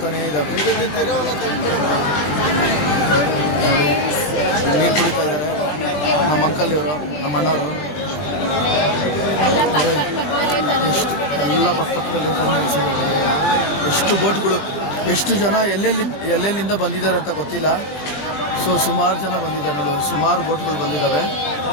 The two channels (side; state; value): right; late; 21 ms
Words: ಇದ್ದಾವೆ. ನೀರು ಕುಡಿತಾ ಇದ್ದಾರೆ ನಮ್ಮ ಅಂಕಲ್ ಇವರು, ನಮ್ಮ ಅಣ್ಣವರು ಎಲ್ಲ ಪಕ್ಕದಲ್ಲಿ. ಎಷ್ಟು ಬೋಟ್ಗಳು, ಎಷ್ಟು ಜನ ಎಲ್ಲೆಲ್ಲಿಂದ ಬಂದಿದ್ದಾರೆ ಅಂತ ಗೊತ್ತಿಲ್ಲ. ಸೊ ಸುಮಾರು ಜನ ಬಂದಿದ್ದಾರೆ ನೋಡಿ, ಸುಮಾರು ಬೋಟ್ಗಳು ಬಂದಿದ್ದಾವೆ.